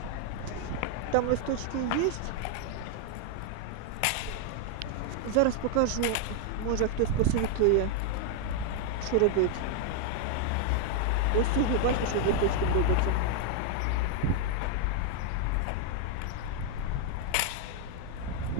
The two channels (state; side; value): different; both; correlation 0.00